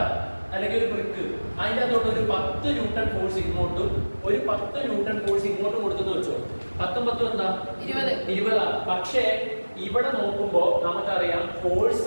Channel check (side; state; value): both; inverted; correlation -1.00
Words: അല്ലെങ്കിൽ ഒരു ബ്രിക്ക്, അതിൻ്റെ അകത്തോട്ട് ഒരു 10 ന്യൂട്ടൺ ഫോഴ്സ് ഇങ്ങോട്ടും ഒരു 10 ന്യൂട്ടൺ ഫോഴ്സ് ഇങ്ങോട്ടും കൊടുത്തെന്ന് വെച്ചോ. 10 10 എന്താ 20. പക്ഷേ ഇവിടെ നോക്കുമ്പോൾ നമുക്കറിയാം